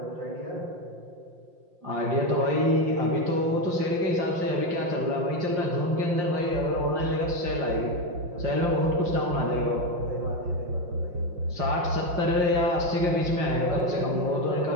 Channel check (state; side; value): late; left; 5.7 ms